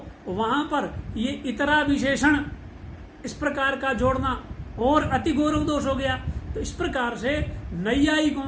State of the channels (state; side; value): identical; both; correlation 1.00